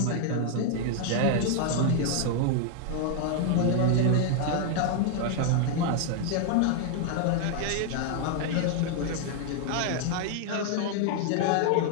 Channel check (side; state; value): both; different; correlation 0.00